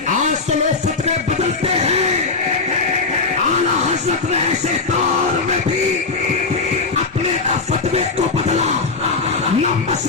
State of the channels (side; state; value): right; quieter; 4.1 dB